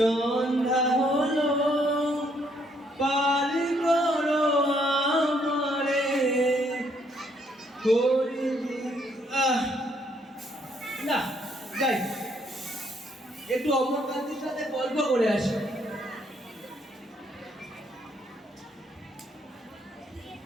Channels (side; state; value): both; normal; correlation 0.70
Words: হলো, পার করো আমারে। না যাই, একটু অমরকান্তির সাথে গল্প করে আসি।